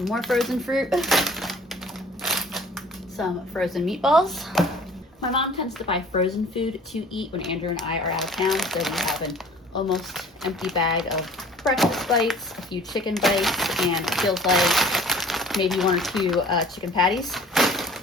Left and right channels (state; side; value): normal; both; correlation 0.48